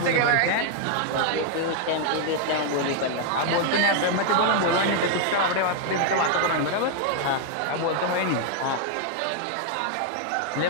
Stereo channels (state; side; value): different; both; correlation 0.00